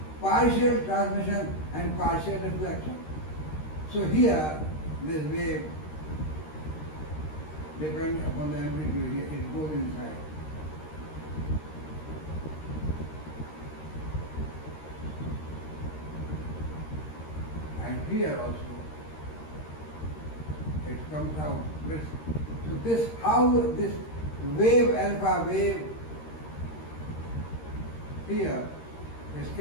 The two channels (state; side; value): late; right; 13 ms